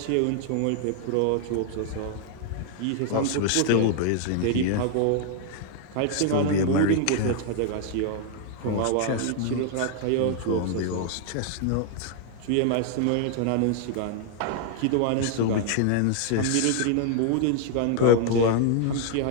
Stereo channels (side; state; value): both; different; correlation 0.00